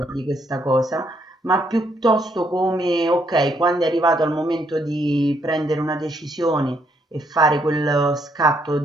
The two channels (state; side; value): normal; both; correlation 0.73